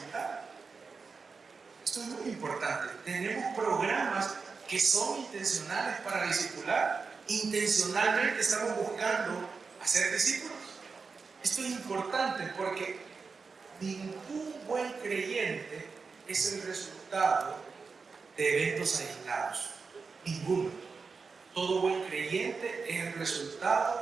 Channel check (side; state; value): left; quieter; 4.8 dB